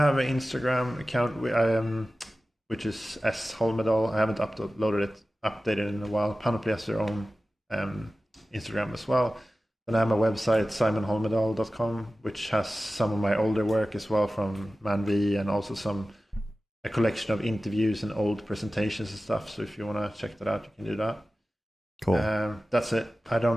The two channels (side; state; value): both; normal; correlation 0.95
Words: an Instagram account which is S Holmedal. I haven't updated in a while. Panoply has their own Instagram as well. And I have my website, simonholmedal.com, which has some of my older work as well from ManV, and also a collection of interviews and old presentations and stuff. So if you want to check that out, you can do that. Cool. That's it. I